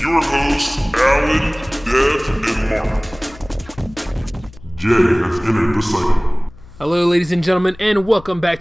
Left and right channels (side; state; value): left; noise; hum, 21 dB below the sound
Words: hosts, Alan, Dev, and Mark. Jay has entered the cycle. Hello, ladies and gentlemen, and welcome back